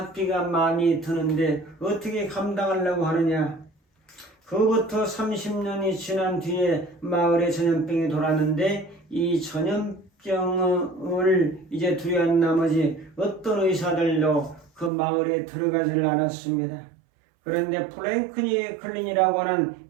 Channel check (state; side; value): drops out; left; at 14.9 s